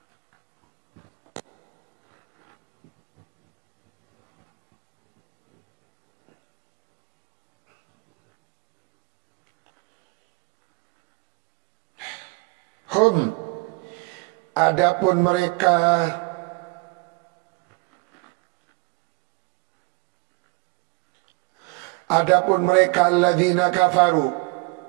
Adapun mereka alladzina kafaru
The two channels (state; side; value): quieter; left; 28.1 dB